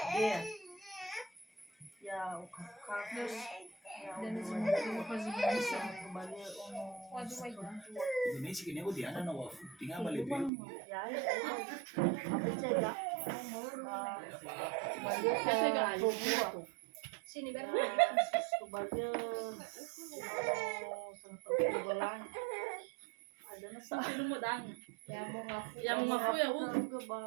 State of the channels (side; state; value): left; drops out; at 10.5 s